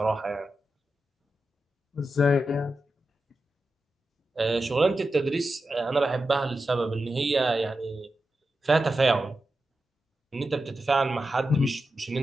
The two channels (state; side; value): normal; both; correlation 0.90